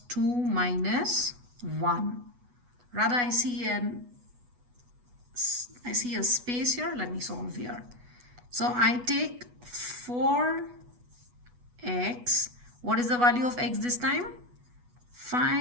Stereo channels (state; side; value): late; left; 8.2 ms